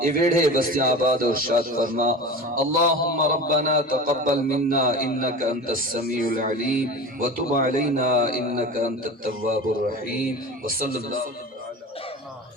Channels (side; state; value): both; normal; correlation 0.32